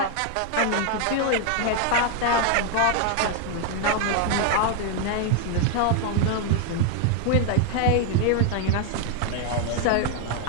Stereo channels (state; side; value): different; both; correlation 0.00